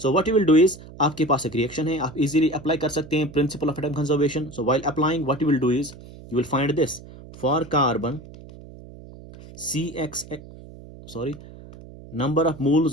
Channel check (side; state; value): right; noise; hum, 18 dB below the sound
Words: what you will do is, आपके पास एक रिएक्शन है, आप इजीली अप्लाई कर सकते हैं principal of atom conservation. So while applying what you will do is you will find this for carbon number of